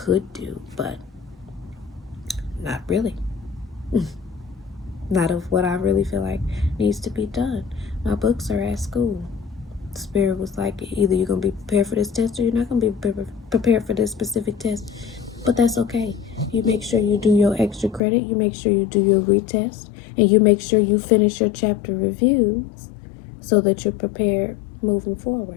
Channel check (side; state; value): right; drops out; at 18.0 s